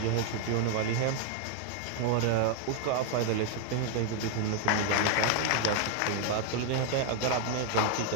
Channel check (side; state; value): both; different; correlation 0.00